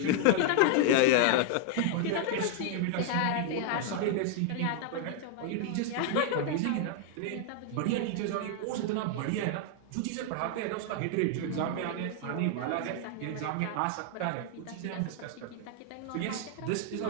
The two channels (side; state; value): both; different; correlation 0.00